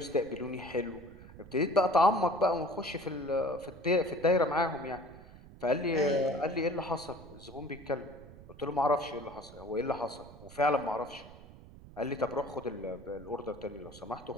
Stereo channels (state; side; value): noise; right; rumble, 18 dB below the sound